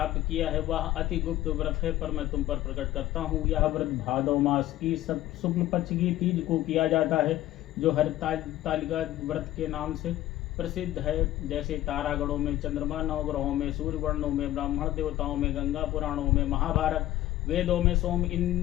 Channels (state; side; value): quieter; right; 14.5 dB